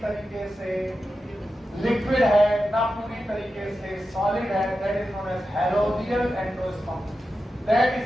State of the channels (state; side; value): normal; both; correlation 0.91